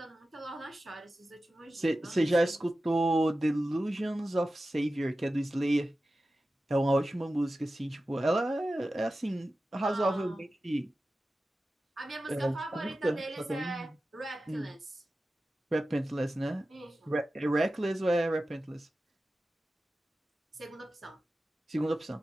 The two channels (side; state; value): both; normal; correlation 0.94